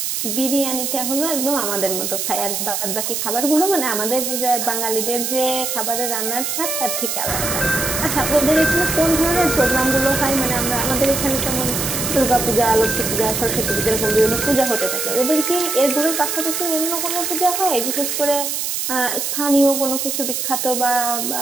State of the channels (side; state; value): right; noise; hiss, 2 dB below the sound